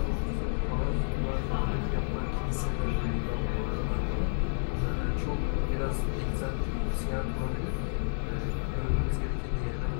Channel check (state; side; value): silent; right; digital silence